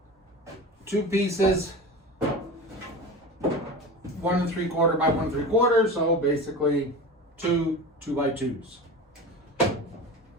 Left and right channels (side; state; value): both; normal; correlation 0.30